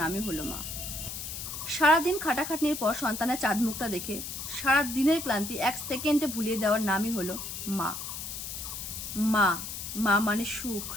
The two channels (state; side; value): noise; left; hiss, 7 dB below the sound